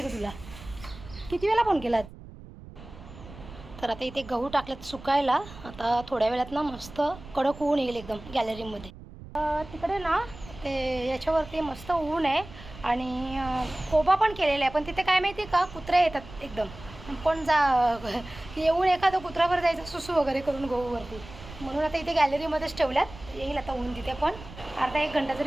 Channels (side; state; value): right; noise; rumble, 16 dB below the sound